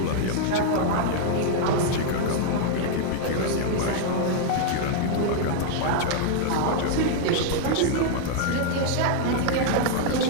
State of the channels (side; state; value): both; different; correlation -0.01